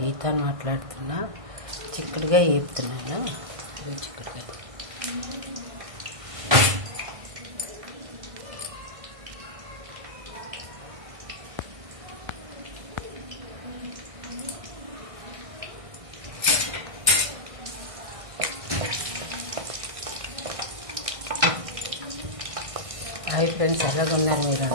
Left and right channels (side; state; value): left; late; 1.6 ms